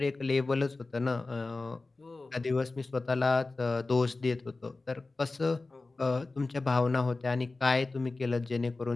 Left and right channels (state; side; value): quieter; right; 3.4 dB